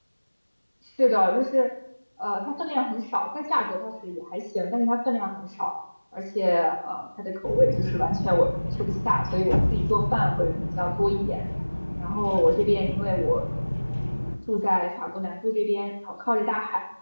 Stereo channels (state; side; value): inverted; both; correlation -1.00